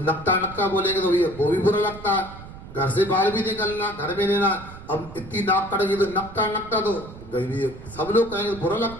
नक्का नक्का बोलेंगे तो भैया वो भी बुरा लगता है। घर से बाहर भी निकलना, घर में लेना, अब इतनी नाक कटेगी तो नक्का नक्का तो गई, सब लोग कहेंगे बुरा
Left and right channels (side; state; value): right; noise; rumble, 15 dB below the sound